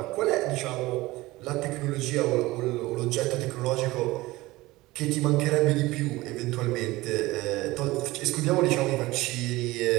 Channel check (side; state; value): left; quieter; 19.5 dB